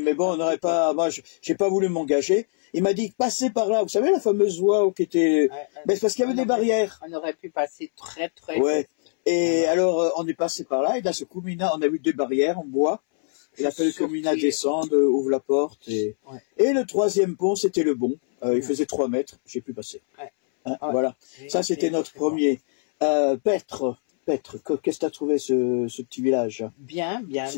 mais bon, on n'aurait pas. Moi, j'ai pas voulu m'engager. Il m'a dit passez par là. Vous savez la fameuse voie qui était. Mais c'est parce qu'il y avait des barrières. On aurait pu passer très très. Ouais. Et alors, on est passé par là. Et d'un seul coup, Mina, on a vu des barrières en bois. Il a fallu que Mina descende, ouvre la porte. Et le troisième pont, c'était le bon. Il faisait 3 mètres. J'ai pu passer. Hein, voilà. Ça, c'était notre premier. Petre, qu'est-ce que t'as trouvé ce petit village? Bien.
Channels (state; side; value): silent; right; 63 dB below the other